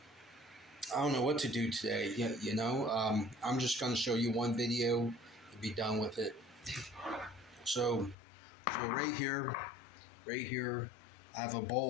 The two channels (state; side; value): drops out; right; at 8.2 s